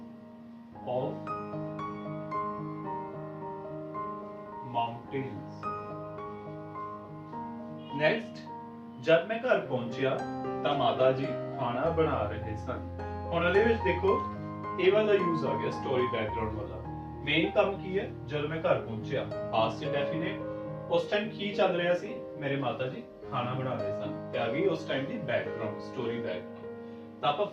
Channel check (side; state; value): both; identical; correlation 1.00